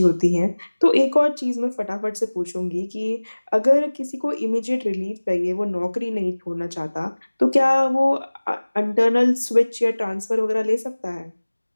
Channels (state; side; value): inverted; both; correlation -1.00